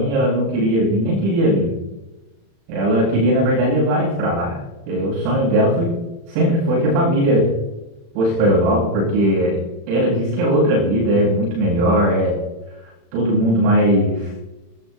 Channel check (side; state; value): left; late; 36 ms